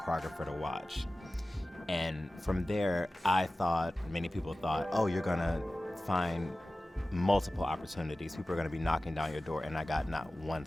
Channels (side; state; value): both; normal; correlation 0.96